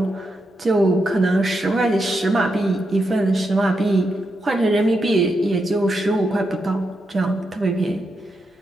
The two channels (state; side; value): normal; both; correlation 0.84